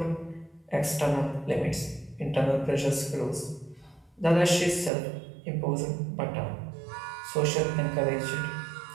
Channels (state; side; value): drops out; left; at 4.9 s